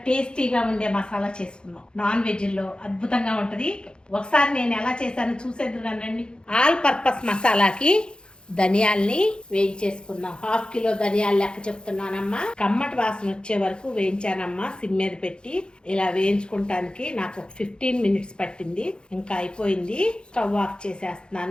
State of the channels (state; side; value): late; right; 0.050 ms